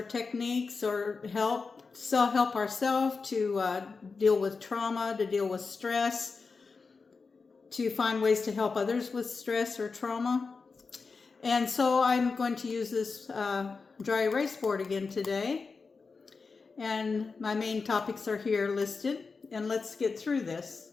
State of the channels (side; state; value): right; quieter; 4.6 dB